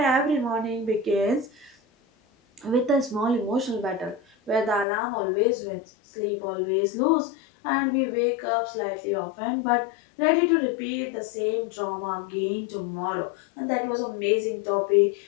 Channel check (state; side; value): drops out; right; at 4.9 s